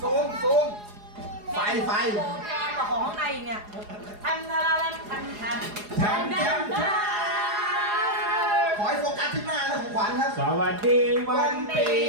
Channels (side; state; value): left; late; 4.8 ms